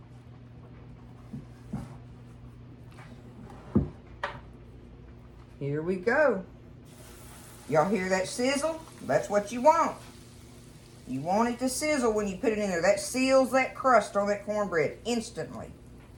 Here we go. Y'all hear that sizzle? That's what you want. You want it to sizzle when you put it in there. That seals that crust on that cornbread instantly.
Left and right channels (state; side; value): identical; both; correlation 1.00